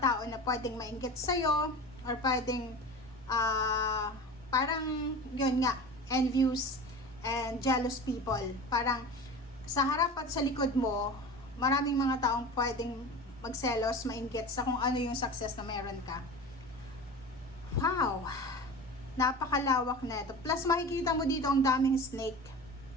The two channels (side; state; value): right; noise; hum, 26 dB below the sound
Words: na pwedeng mainggit sa'yo, or pwedeng parang yun nga, envious and jealous people. Parang sa harap at sa likod mo, maraming mga taong pwedeng magselos, mainggit sa kung ano yung success na meron ka. Wow! Napakalawak na ito. Plus, makikita mo dito ang daming snake.